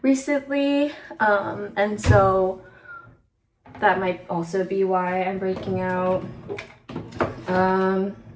recently, and so that might also be why I'm breaking out.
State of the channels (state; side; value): identical; both; correlation 1.00